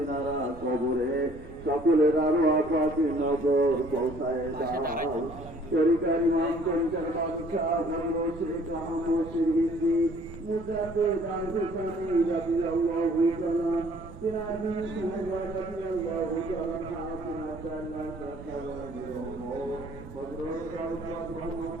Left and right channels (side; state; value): right; noise; rumble, 15 dB below the sound